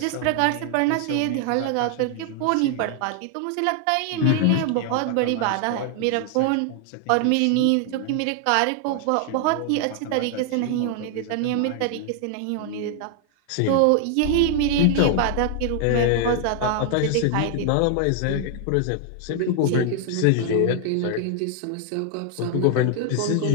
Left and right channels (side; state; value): both; different; correlation 0.00